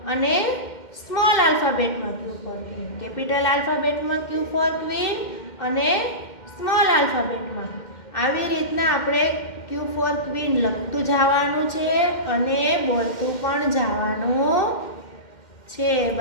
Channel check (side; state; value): right; late; 2.1 ms